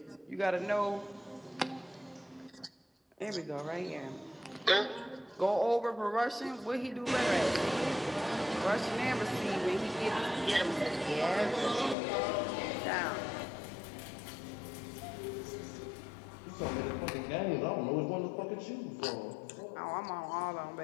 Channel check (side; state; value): right; drops out; at 12.0 s